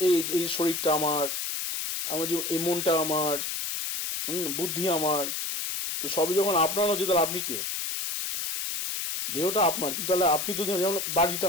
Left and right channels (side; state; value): left; noise; hiss, 3 dB below the sound